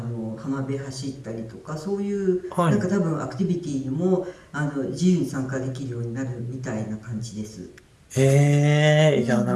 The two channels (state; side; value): identical; both; correlation 1.00